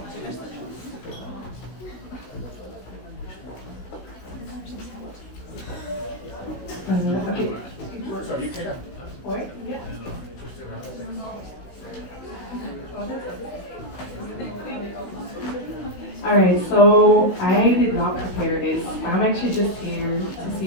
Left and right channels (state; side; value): late; right; 16 ms